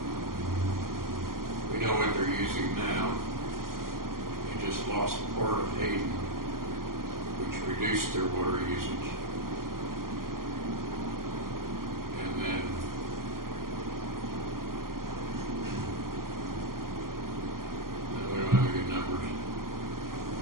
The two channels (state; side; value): late; left; 0.91 ms